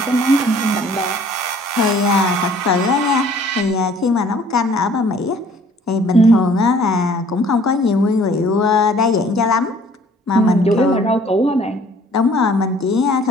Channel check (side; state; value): both; normal; correlation 0.55